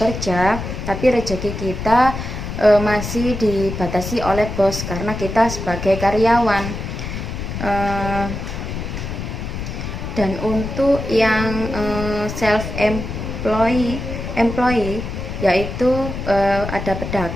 tapi rezeki kita masih dibatasi oleh bos karena kita sebagai karyawan. Dan untuk yang self employee yaitu ada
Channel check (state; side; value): noise; left; rumble, 6 dB below the sound